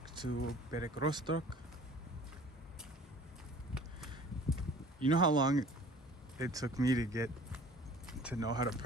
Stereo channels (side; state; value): both; normal; correlation 0.48